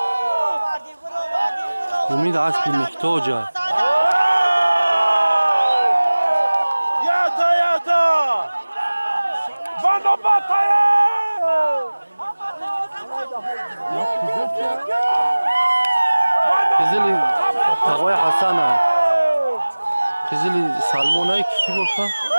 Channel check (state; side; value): inverted; both; correlation -1.00